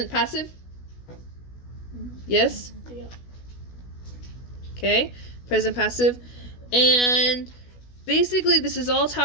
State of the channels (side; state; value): right; late; 16 ms